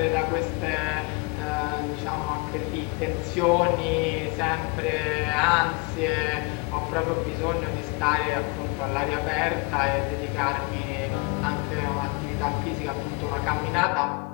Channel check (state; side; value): quieter; right; 28.8 dB